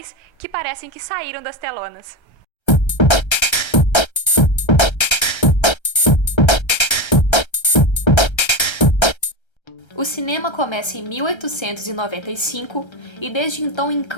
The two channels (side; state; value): right; late; 1.3 ms